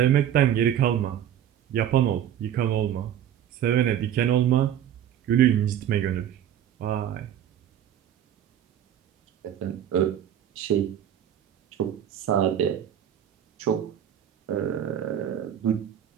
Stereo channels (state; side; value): quieter; left; 10.3 dB